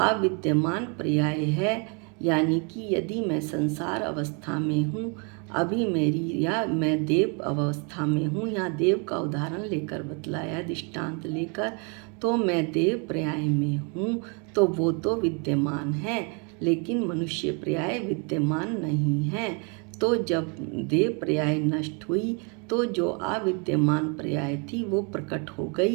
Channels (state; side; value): quieter; left; 35.2 dB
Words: पर्याय है, यानी कि यदि मैं संसार अवस्था में हूँ अभी मेरी, या मैं देव अवस्था में हूँ, या देव का उदाहरण लेकर बतलाया दृष्टांत लेकर, तो मैं देव पर्याय में हूँ तो वो तो विद्यमान है, लेकिन मनुष्य पर्याय विद्यमान नहीं है। तो जब देव पर्याय नष्ट हुई तो जो अविद्यमान पर्याय थी वो प्रकट हो